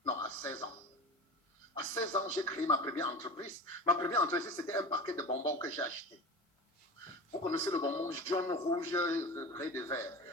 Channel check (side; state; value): both; normal; correlation 0.33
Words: Non, à 16 ans. À 16 ans, j'ai créé ma première entreprise. Ma première entreprise, c'était un paquet de bonbons que j'ai acheté. Vous connaissez le bonbon jaune, rouge, gris et vert.